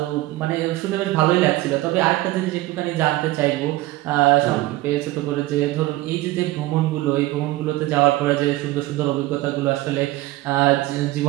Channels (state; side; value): quieter; left; 17.8 dB